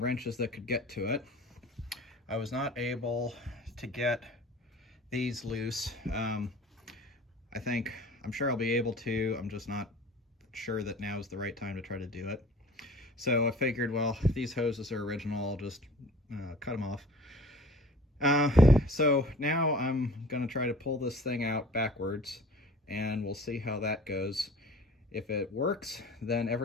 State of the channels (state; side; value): normal; both; correlation 0.45